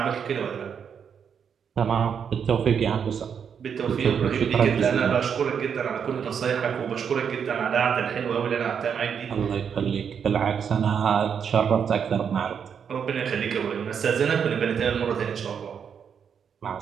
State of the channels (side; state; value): left; quieter; 7.3 dB